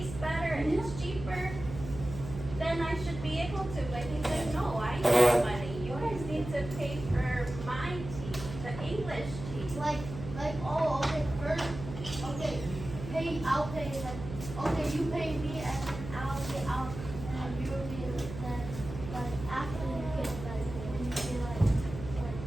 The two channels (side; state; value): right; noise; hum, 10 dB below the sound